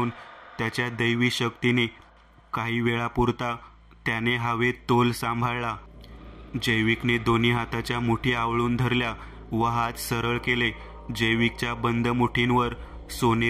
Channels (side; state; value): both; identical; correlation 1.00